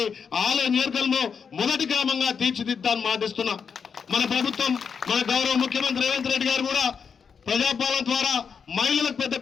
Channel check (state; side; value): quieter; right; 6.3 dB